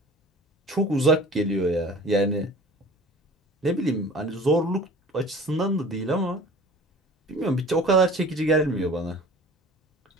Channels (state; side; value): normal; both; correlation 0.43